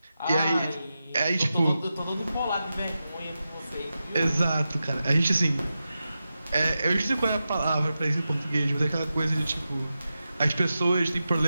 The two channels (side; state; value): both; inverted; correlation -0.91